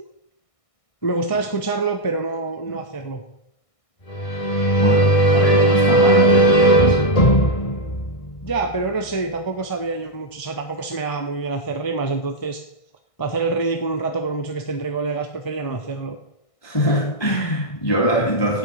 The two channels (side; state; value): right; late; 1.6 ms